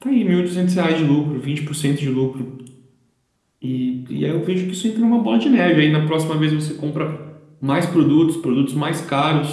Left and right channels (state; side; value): identical; both; correlation 1.00